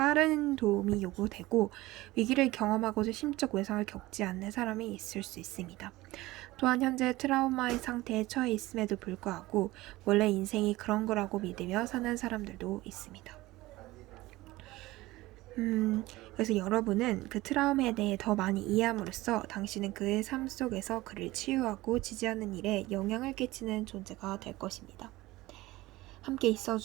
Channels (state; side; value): quieter; left; 18.8 dB